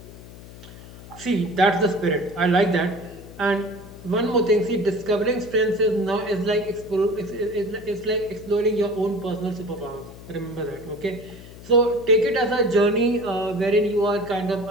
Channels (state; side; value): noise; left; hum, 17 dB below the sound